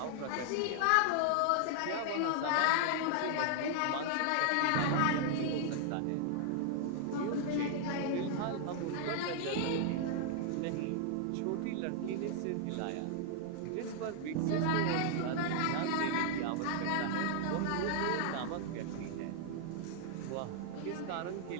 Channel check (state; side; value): different; both; correlation 0.00